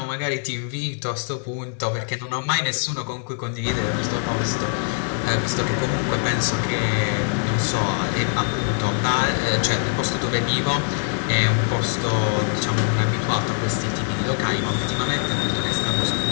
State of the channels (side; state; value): right; silent; digital silence